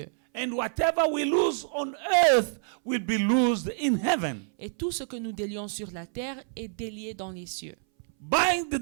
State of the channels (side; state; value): left; silent; 60 dB below the other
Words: And whatever we lose on earth will be loosed in heaven. Et tout ce que nous délions sur la terre est délié dans les cieux.